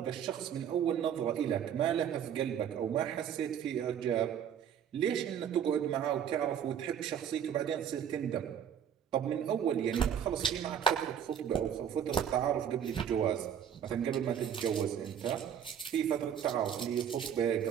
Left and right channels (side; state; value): left; quieter; 8.8 dB